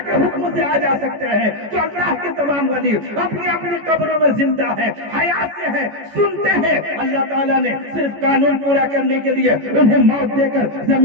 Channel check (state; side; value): late; left; 14 ms